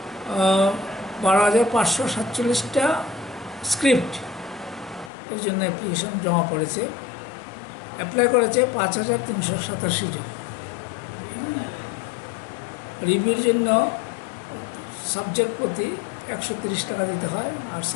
স্ক্রিপ্ট এর জন্য অ্যাপ্লিকেশন জমা পড়েছে। অ্যাপ্লাই করেছে 5,387 জন। রিভিউর জন্য সাবজেক্ট প্রতি 130 টাকা দিতে হয়, আর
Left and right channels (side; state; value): right; drops out; at 5.1 s